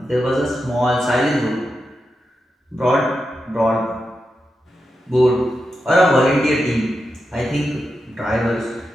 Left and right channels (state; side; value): normal; both; correlation 0.88